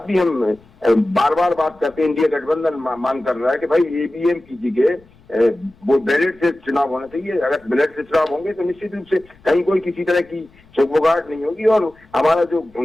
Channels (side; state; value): left; noise; rumble, 29 dB below the sound